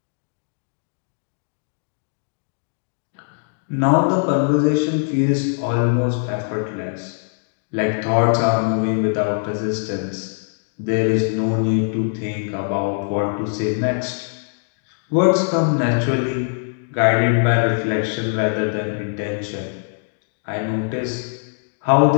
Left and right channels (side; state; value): right; silent; 64 dB below the other